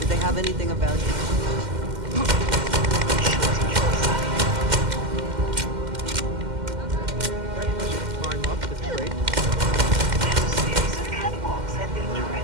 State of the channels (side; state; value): left; late; 2.1 ms